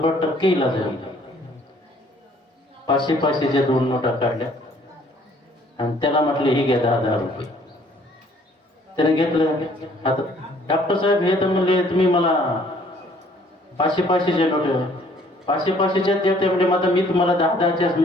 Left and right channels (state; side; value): normal; both; correlation 0.60